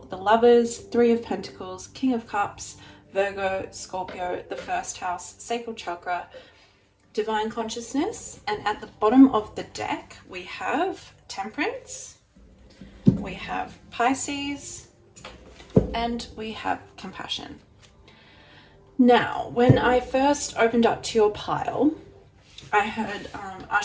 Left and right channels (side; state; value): both; identical; correlation 1.00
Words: the Lovers, 3 of Pentacles, King of Cups, Virgo, Scorpio, the first house, sacral chakra, divine consciousness, and at the bottom of the deck we have Temperance, we have Pisces, and we have Compassion. Now, when I first opened up to your pile, I heard